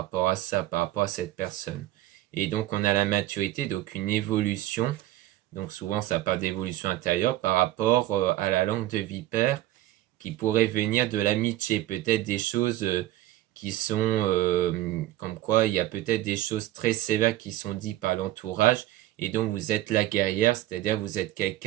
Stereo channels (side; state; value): left; quieter; 14.8 dB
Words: à ça, par rapport à cette personne. Et donc on a la maturité, donc une évolution, donc souvent ça parle d'évolution intérieure par rapport à la langue de vipère qui pourrait venir de l'amitié, peut-être des choses qui sont comme quoi il y a peut-être des choses très sévères qui sont dites par l'entourage et donc vous êtes la guerrière, c'est-à-dire vous êtes